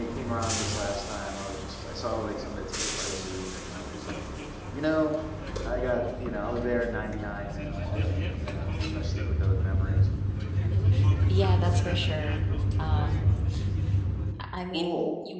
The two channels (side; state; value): both; identical; correlation 1.00